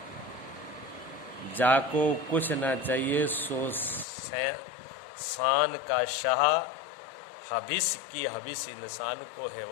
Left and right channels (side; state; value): right; drops out; at 4.0 s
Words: जाको कुछ ना चाहिए सो शान का शाह, हविस की हविस इंसान को